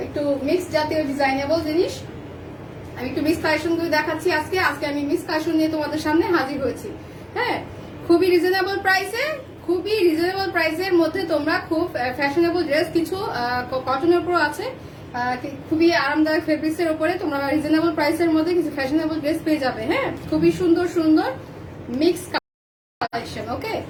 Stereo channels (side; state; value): both; identical; correlation 1.00